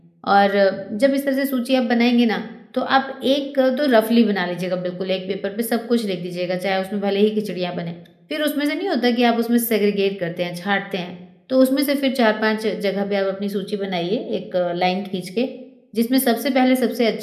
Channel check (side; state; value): both; identical; correlation 1.00